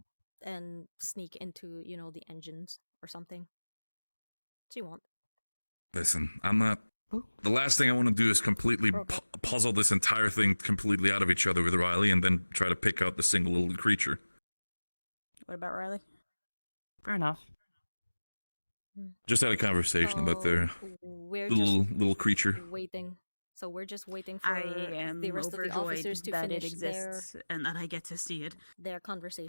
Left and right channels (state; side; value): inverted; both; correlation -1.00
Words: and sneak into, the engines or something. She won't. Listen, I'm not... The last thing I want to do is completely puzzle this entire thing completely out of each other with Riley and then try to pick out the single little creature. What about Riley? Fair enough. Just had a conversation about their little creature. Waiting. So we're just waiting for I am the rest of the officers to that finish it exists and that I get to see it. Their